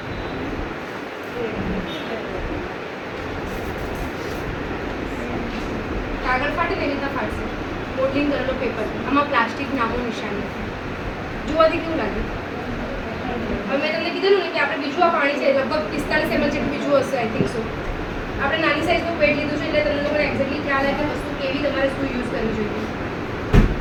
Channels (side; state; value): both; identical; correlation 1.00